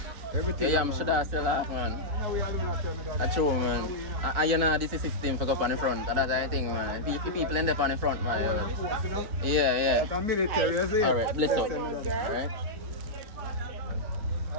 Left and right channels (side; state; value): left; late; 4.5 ms